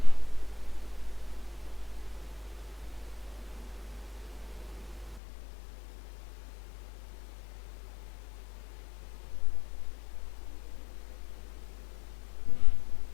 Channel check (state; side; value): drops out; right; at 5.2 s